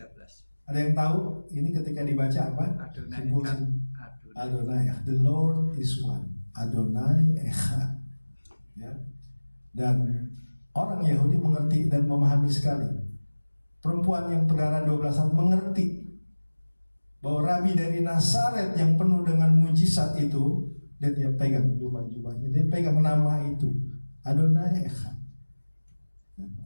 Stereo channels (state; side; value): inverted; both; correlation -1.00